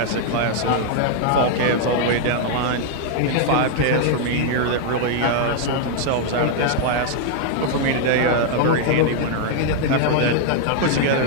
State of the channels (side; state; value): both; different; correlation 0.00